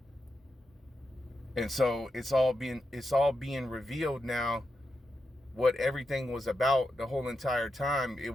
And so it's all being revealed now, what everything was about the whole entire time. It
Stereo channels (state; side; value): normal; both; correlation 0.87